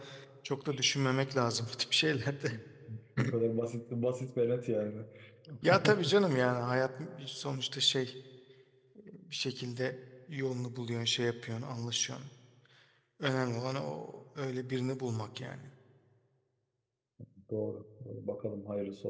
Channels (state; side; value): identical; both; correlation 1.00